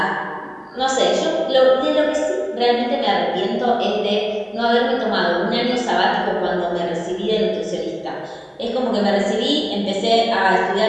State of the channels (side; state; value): both; identical; correlation 1.00